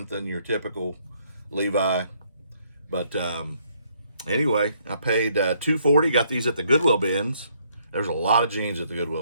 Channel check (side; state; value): both; inverted; correlation -0.69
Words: than your typical Levi. But anyway, I paid $2.40. Got these at the Goodwill bins. There's a lot of jeans at the